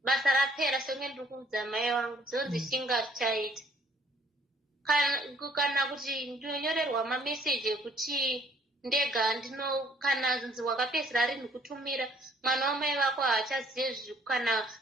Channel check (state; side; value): normal; both; correlation 0.61